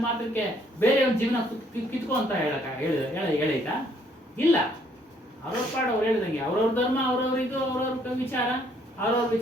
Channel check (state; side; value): normal; both; correlation 0.66